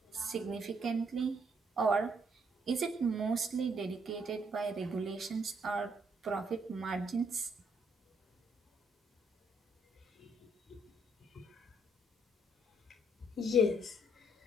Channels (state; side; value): normal; both; correlation 0.71